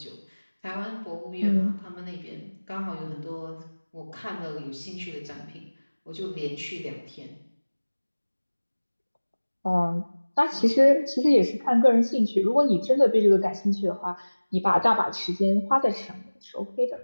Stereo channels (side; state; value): both; inverted; correlation -1.00